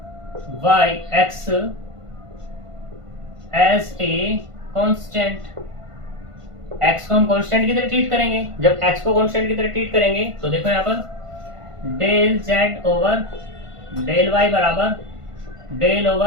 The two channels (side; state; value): left; late; 1.5 ms